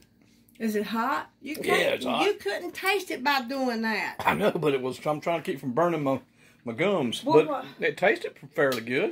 Is it hot? You Yeah, it's hot. You couldn't taste it by doing that. I know, but it was. I'm trying to keep from burning my gums. Well, but it tasted fairly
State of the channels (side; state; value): both; identical; correlation 1.00